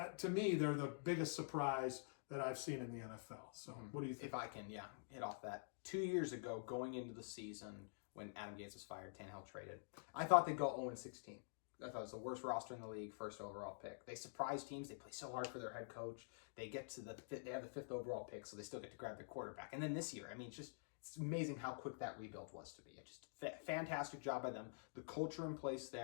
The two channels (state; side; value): silent; right; digital silence